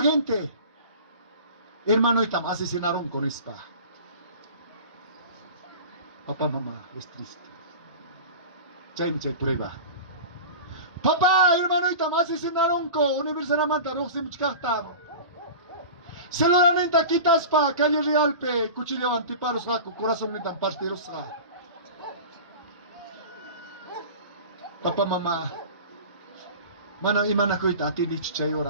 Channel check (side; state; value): both; inverted; correlation -0.35